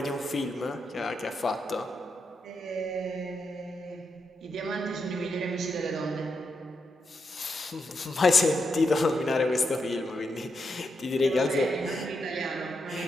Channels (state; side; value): normal; both; correlation 0.83